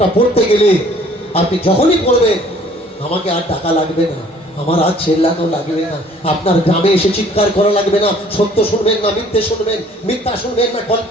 পড়তে গেলে আপনি যখনই পড়বেন, আমাকে আর টাকা লাগবে না, আমার আর চেল্লানো লাগবে না, আপনার গ্রামে এসে চিৎকার করা লাগবে না। সত্য শুনবেন না মিথ্যে শুনবেন, মিথ্যা শুনবেন না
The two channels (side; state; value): both; normal; correlation 0.56